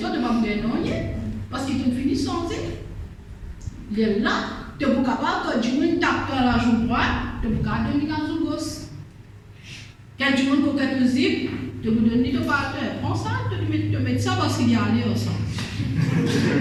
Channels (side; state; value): both; identical; correlation 1.00